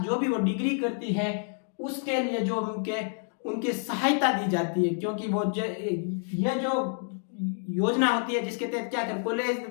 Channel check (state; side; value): silent; right; 59 dB below the other